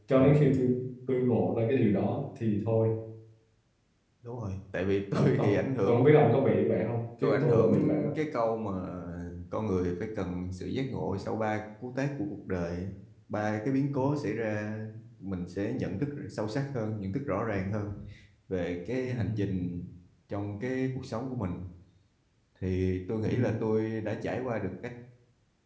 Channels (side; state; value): both; identical; correlation 1.00